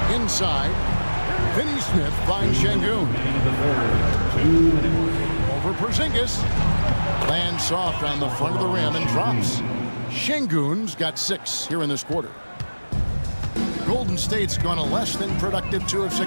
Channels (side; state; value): both; inverted; correlation -1.00